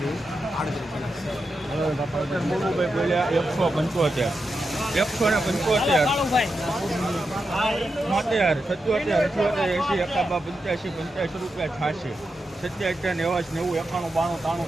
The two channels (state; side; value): normal; both; correlation 0.88